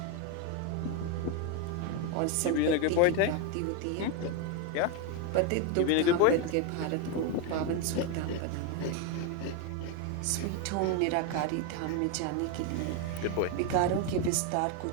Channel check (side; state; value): both; different; correlation 0.02